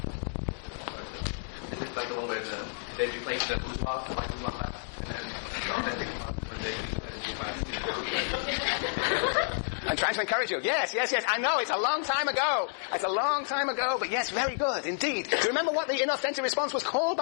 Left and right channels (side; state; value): right; silent; digital silence